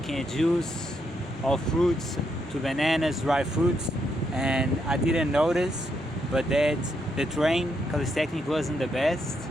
a juice of fruits, to bananas, dry fruits, and I didn't notice, but that the train calisthenics wasn't the best,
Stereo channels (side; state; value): both; normal; correlation 0.78